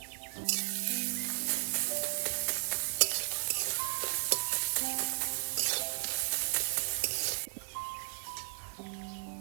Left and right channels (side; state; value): left; silent; 55 dB below the other